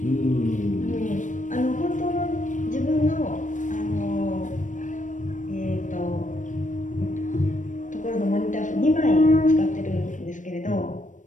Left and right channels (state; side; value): late; right; 0.37 ms